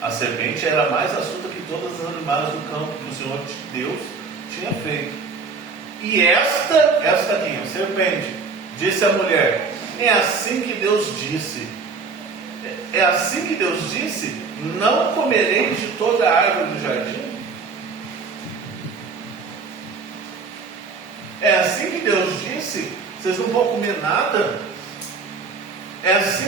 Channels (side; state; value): left; quieter; 4.7 dB